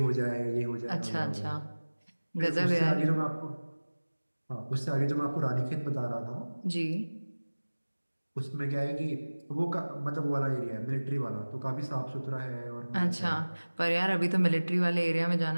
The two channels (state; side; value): inverted; both; correlation -1.00